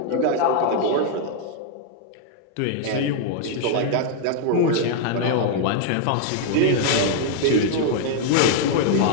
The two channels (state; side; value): different; both; correlation 0.00